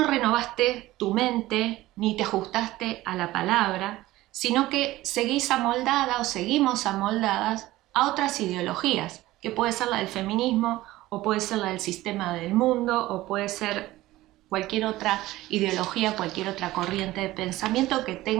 renovaste tu mente ni te ajustaste a la palabra, sino que seguís amoldada o seguimos amoldadas a otras ideologías, que puede ser la del feminismo, o puede ser la del sistema del mundo, o puede ser cualquier otra ideología, cualquier otra corriente de pensamiento que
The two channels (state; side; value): quieter; left; 17.0 dB